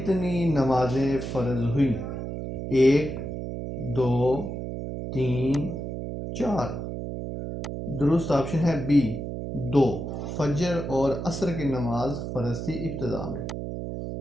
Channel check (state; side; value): noise; right; hum, 5 dB below the sound